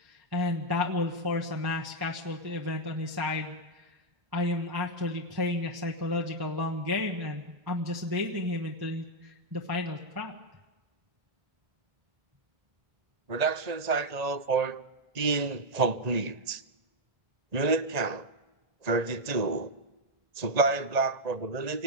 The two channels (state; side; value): late; left; 1.8 ms